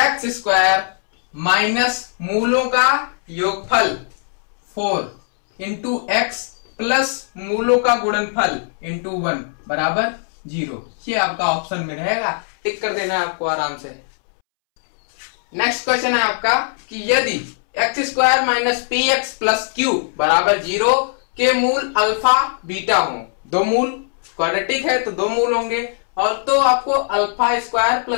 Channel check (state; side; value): silent; right; 66 dB below the other